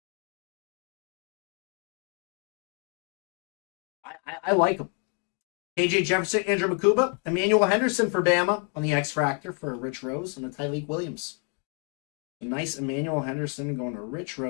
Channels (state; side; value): quieter; right; 39.5 dB